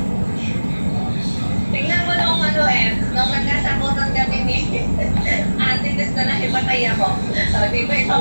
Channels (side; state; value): both; inverted; correlation -1.00